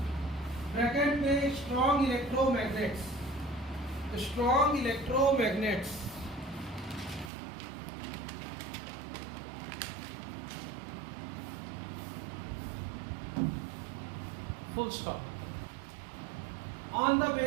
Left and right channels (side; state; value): left; drops out; at 7.3 s